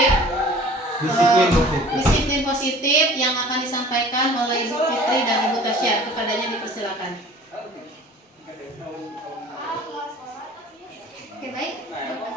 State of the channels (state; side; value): normal; both; correlation 0.47